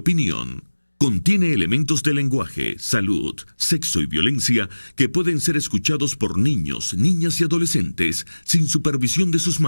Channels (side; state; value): both; inverted; correlation -1.00